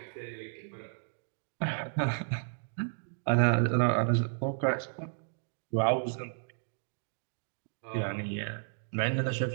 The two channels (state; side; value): silent; left; digital silence